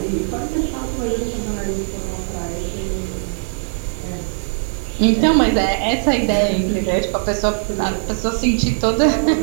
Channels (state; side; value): silent; left; digital silence